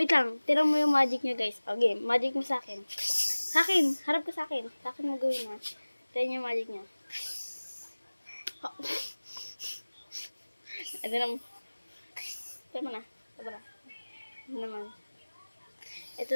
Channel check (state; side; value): inverted; both; correlation -1.00